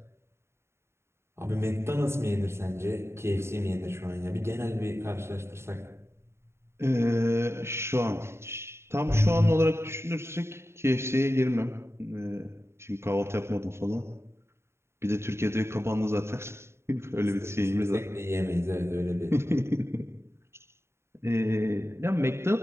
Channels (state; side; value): late; left; 0.13 ms